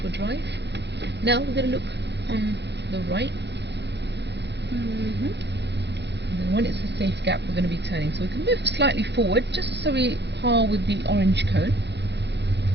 for drive. Now we're going to look on the right. And then when it's a safe gap, we're going to be turning. So we can move slightly forward, just so we par with the orange cone.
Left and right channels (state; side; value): late; left; 0.50 ms